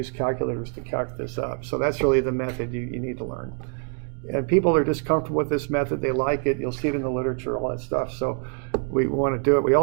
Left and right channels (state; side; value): quieter; left; 38.9 dB